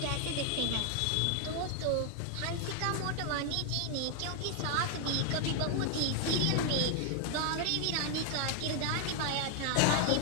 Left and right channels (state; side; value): different; both; correlation 0.00